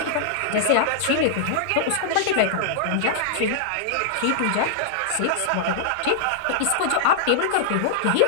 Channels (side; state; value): both; different; correlation -0.01